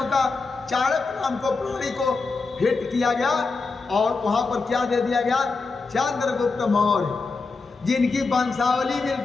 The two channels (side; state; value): right; quieter; 4.1 dB